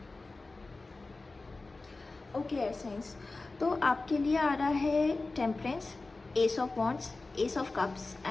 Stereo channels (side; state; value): right; quieter; 3.4 dB